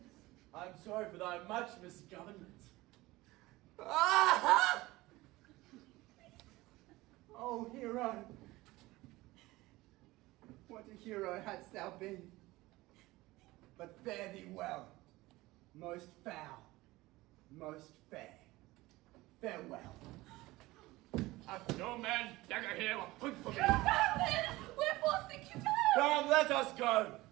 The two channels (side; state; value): left; quieter; 19.4 dB